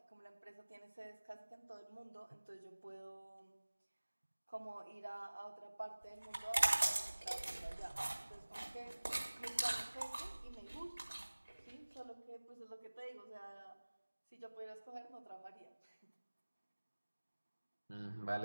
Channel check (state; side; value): inverted; both; correlation -1.00